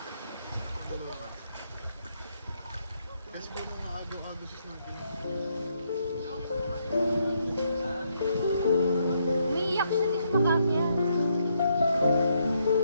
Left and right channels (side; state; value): both; inverted; correlation -0.75